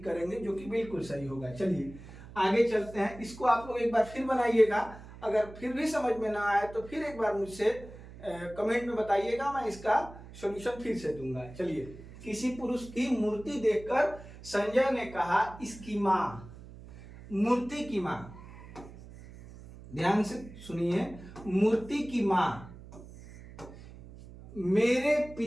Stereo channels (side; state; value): right; noise; hum, 17 dB below the sound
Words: करेंगे, जो कि बिल्कुल सही होगा। चलिए आगे चलते हैं। इसको आप लोग एक बार फिर बनाइएगा, अगर फिर भी समझ में ना आए तो फिर एक बार मुझसे कमेंट में बताइएगा, मैं इसका सॉल्यूशन फिर से दूंगा। चलिए, किसी पुरुष की मूर्ति देखकर संजय ने कहा, इसकी मां, मूर्ति की मां, ध्यान से सुनिए, मूर्ति की मां मेरे